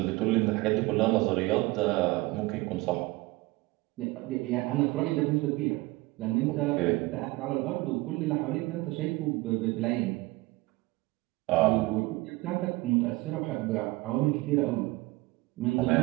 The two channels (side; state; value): left; quieter; 21.2 dB